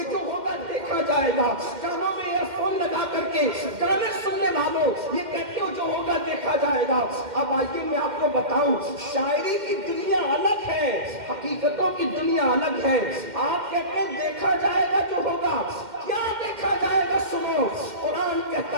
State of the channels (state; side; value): late; left; 2.1 ms